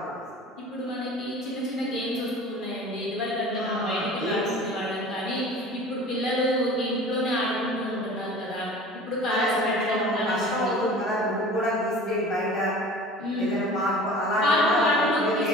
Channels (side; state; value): both; normal; correlation 0.41